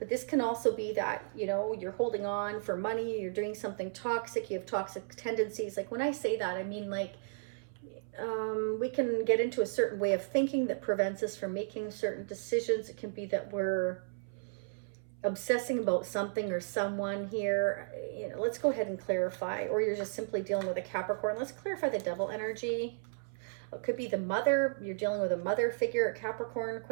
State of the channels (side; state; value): left; silent; 55 dB below the other